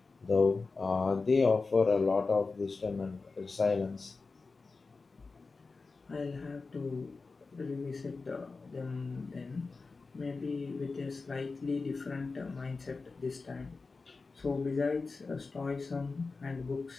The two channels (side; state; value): right; quieter; 4.1 dB